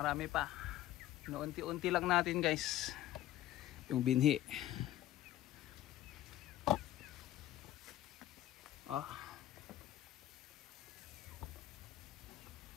pa. Unti-unti lang natin guys. Yung binhi. Oh.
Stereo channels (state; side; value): quieter; right; 13.6 dB